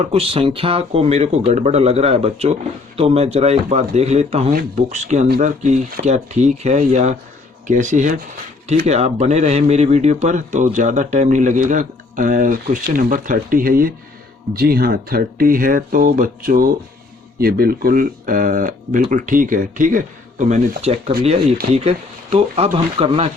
कुछ संख्या को मेरे को गड़बड़ लग रहा है बच्चों, तो मैं ज़रा एक बात देख लेता हूँ बुक्स के अंदर कि क्या ठीक है या कैसी है, ठीक है। आप बने रहें मेरी वीडियो पर तो ज़्यादा टाइम नहीं लगेगा। क्वेश्चन नंबर 30 है ये, जी हाँ 30 है। तो बच्चों ये बिल्कुल ठीक है, ठीक है। तो मैंने चेक कर लिया, ये ठीक है। तो अब हम करना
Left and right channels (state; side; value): quieter; right; 3.7 dB